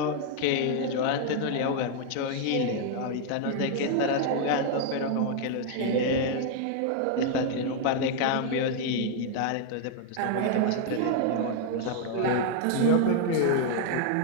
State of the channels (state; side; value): different; both; correlation 0.00